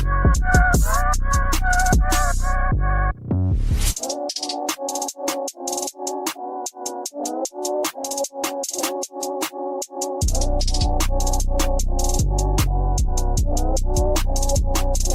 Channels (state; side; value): identical; both; correlation 1.00